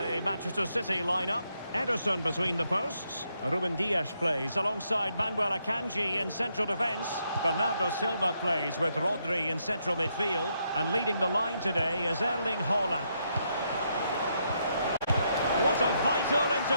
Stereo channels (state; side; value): inverted; both; correlation -0.78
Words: Manchester City lineup. Ederson between the posts. Ruben Dias plays alongside Manuel Akanji in central defence. Bernardo Silva plays with Rodri in central midfield. And leading the line today is Erling Haaland. What a vital